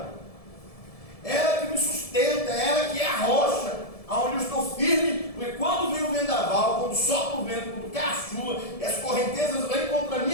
Ela que me sustenta, ela que é a rocha aonde eu estou firme, porque quando vem o vendaval, quando sopra o vento, quando cai a chuva, e as correntezas vêm contra a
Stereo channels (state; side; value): late; right; 1.7 ms